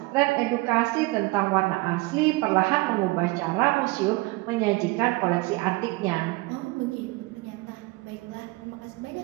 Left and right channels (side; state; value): left; quieter; 23.1 dB